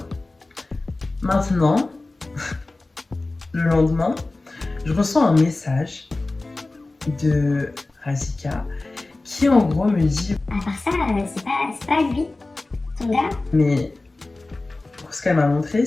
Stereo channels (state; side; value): quieter; right; 3.1 dB